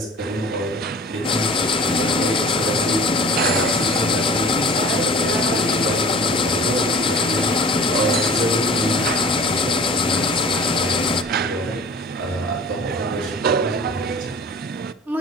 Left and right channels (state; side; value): normal; both; correlation 0.44